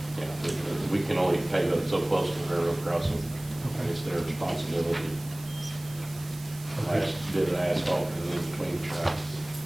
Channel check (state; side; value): noise; right; hiss, 19 dB below the sound